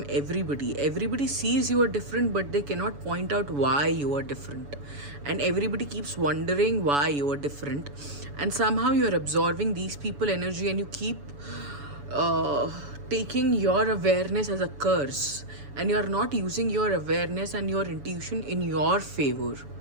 everybody. Everybody sees you are different, but they cannot point out why you are different. And everybody keeps wondering why you are different. And somehow you're absorbing these people energy and you keep taking your awareness as a curse. And you're not using your awareness and your intuition in your favor.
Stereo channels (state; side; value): late; left; 7.0 ms